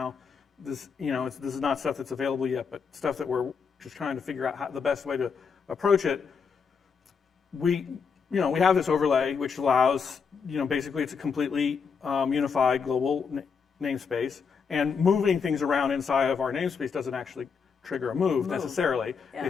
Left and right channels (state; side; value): quieter; right; 5.9 dB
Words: This, this is not stuff that's available yet, but stuff that we're just trying to figure out the best way to approach it. We have this overlay which allows, basically it's a completely unified global namespace, and moving things around inside of our namespace doesn't actually trigger a move necessarily. Yeah.